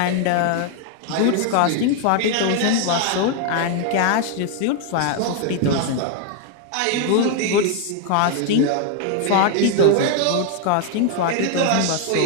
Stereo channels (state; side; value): different; both; correlation 0.00